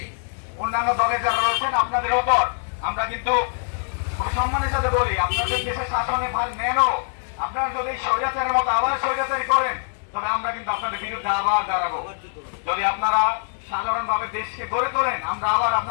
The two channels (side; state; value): right; silent; digital silence